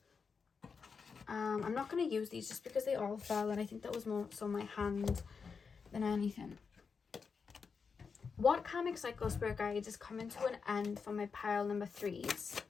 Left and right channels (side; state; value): right; quieter; 5.5 dB